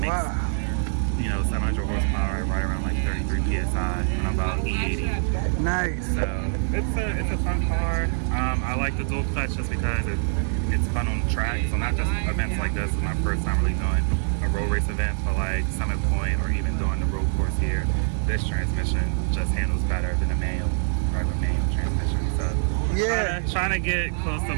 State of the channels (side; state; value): left; silent; digital silence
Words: you know, 700 horsepower, right around like 33 psi on about E80. Nice. So it's a fun car. I like the dual clutch just because it's fun on the track. So not just events like this. It's my first time really doing a road race event for like Summit Point or even doing the road course here. This transmission just handles better than a regular manual transmission. So trying to get close to